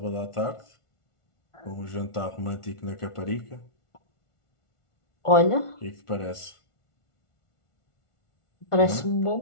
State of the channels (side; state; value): right; late; 1.4 ms